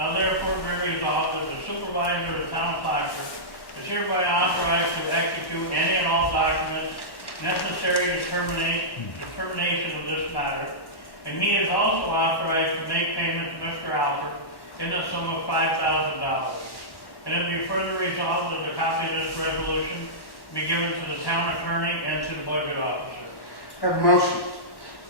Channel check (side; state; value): right; late; 1.1 ms